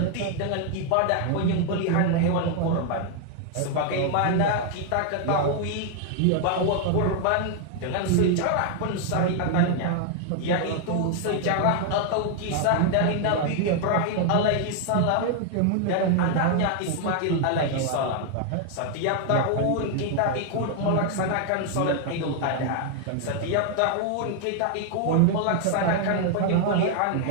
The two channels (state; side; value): different; both; correlation 0.00